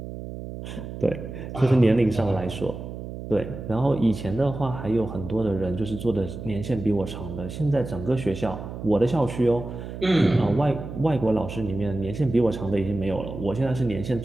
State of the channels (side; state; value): right; noise; hum, 9 dB below the sound